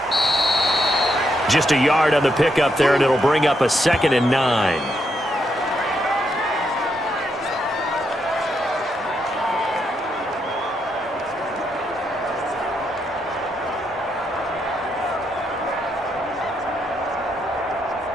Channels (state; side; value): normal; both; correlation 0.79